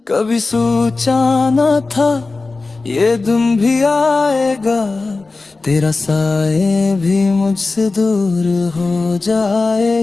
कभी सोचा न था ये दिन भी आएगा, तेरा साए भी मुझसे दूर हो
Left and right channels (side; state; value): right; quieter; 3.7 dB